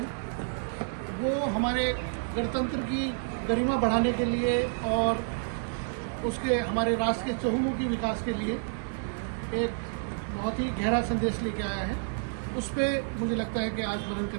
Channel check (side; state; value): left; silent; 56 dB below the other